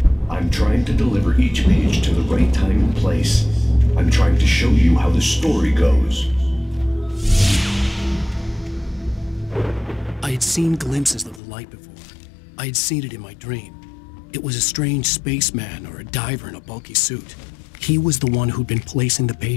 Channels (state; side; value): drops out; right; at 11.4 s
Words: I'm trying to deliver each page to the right time and place. I'm trying to show you how the story goes. I had seen glimpses of the light before. I had seen it in my dream. It was a strange spaceman or a diver in a bulky suit. He was the one who'd been placing the